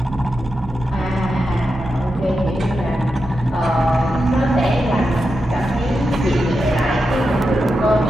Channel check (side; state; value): both; normal; correlation 0.88